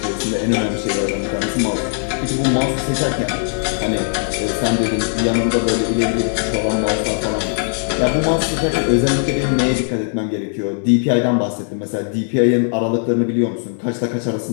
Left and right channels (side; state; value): right; silent; digital silence